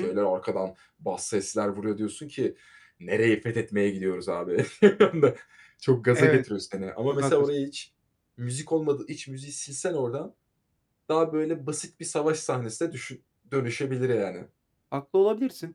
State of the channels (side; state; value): both; identical; correlation 1.00